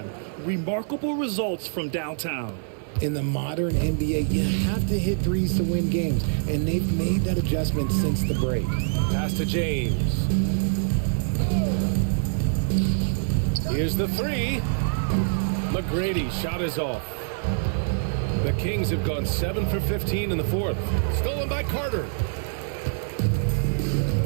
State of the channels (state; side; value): silent; left; 62 dB below the other